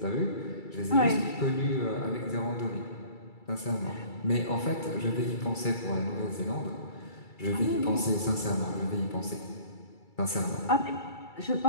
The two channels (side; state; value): right; late; 2.3 ms